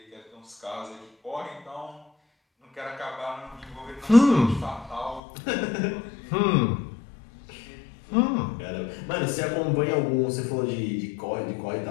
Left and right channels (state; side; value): drops out; right; at 5.2 s